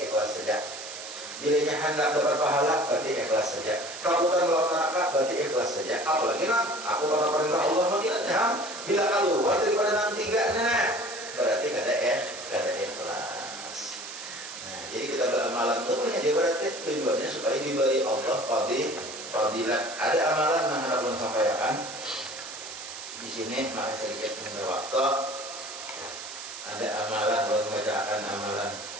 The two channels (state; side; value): noise; right; hiss, 10 dB below the sound